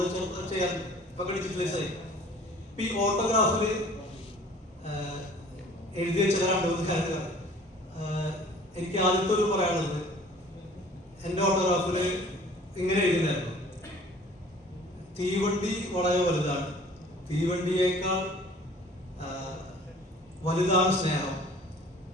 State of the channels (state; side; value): normal; both; correlation 0.50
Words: ചെയ്യാറുണ്ട്. ഇപ്പൊ ഡിജിറ്റലൈസ് ആയി. ഈ ഓട്ടോഗ്രാഫിൽ എഴുതി വെച്ച 2-3 കാര്യങ്ങൾ എനിക്ക് ആദ്യത്തെ ഒരു പറയാനുള്ളത്, എൻ്റെ ഓട്ടോഗ്രാഫിൽ ഇങ്ങനെ എഴുതിയിട്ടുണ്ടായിരുന്നു: തീവണ്ടി വളരെ വലുതാണ്, തീവണ്ടിയേക്കാൾ വലുതാണ് സ്നേഹം,